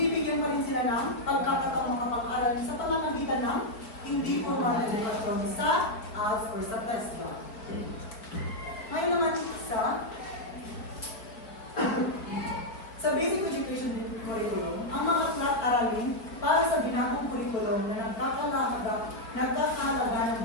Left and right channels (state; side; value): late; right; 4.5 ms